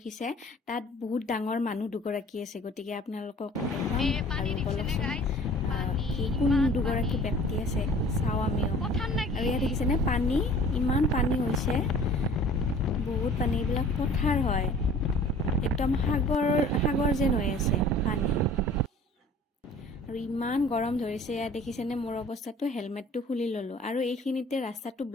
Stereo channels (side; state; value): both; normal; correlation 0.48